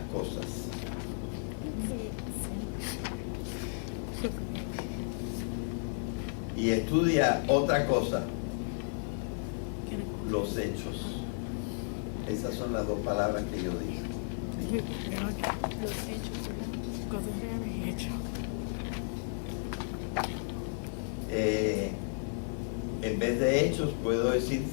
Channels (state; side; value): silent; right; 55 dB below the other